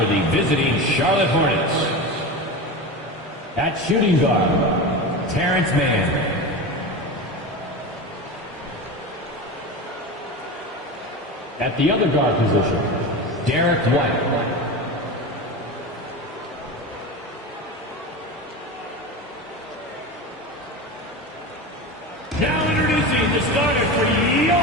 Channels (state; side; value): normal; both; correlation 0.25